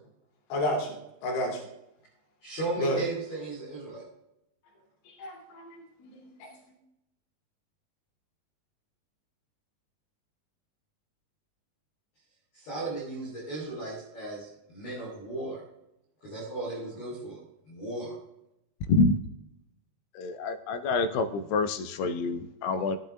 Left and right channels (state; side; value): late; right; 20 ms